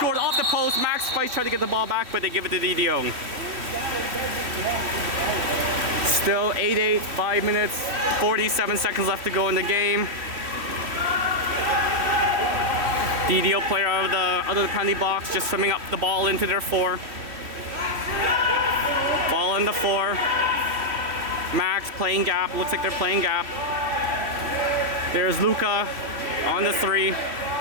off the post. Max fights, try to get the ball back, but they give it to DDO. Still 8-8, 5 minutes, 47 seconds left to go in the game. DDO player out of the penalty box, just swimming up the ball into their 4. Ball in the 4. Max playing gap, looks like they're playing gap. There's Luca on the 3.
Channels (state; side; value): late; left; 3.1 ms